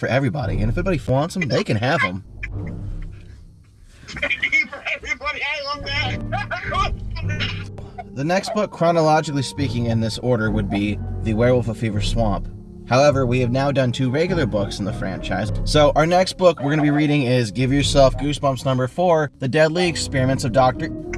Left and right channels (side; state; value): both; identical; correlation 1.00